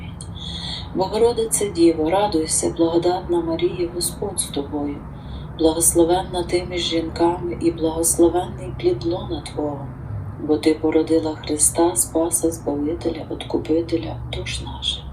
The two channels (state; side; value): identical; both; correlation 1.00